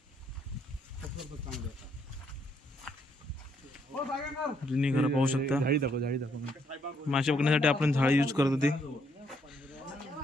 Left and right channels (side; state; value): both; normal; correlation 0.72